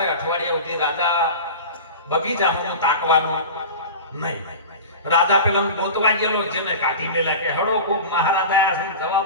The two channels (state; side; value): inverted; both; correlation -0.31